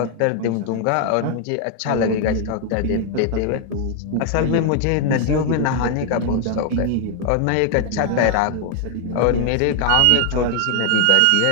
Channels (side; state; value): both; different; correlation 0.00